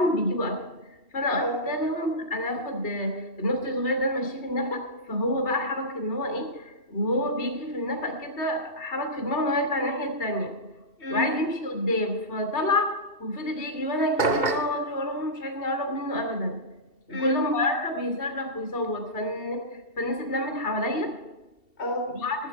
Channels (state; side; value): late; right; 2.7 ms